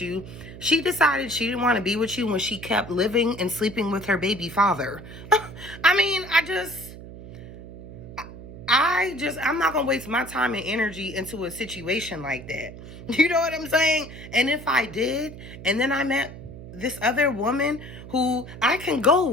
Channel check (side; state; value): right; noise; hum, 14 dB below the sound